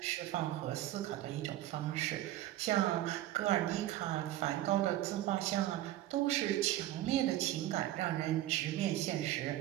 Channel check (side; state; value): left; quieter; 14.3 dB